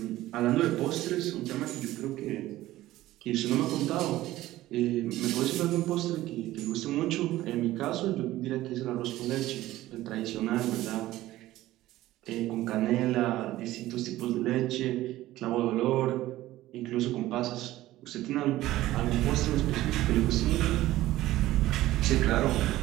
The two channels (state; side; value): quieter; left; 15.8 dB